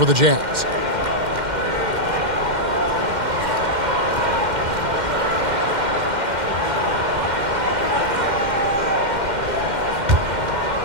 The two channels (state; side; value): late; left; 2.1 ms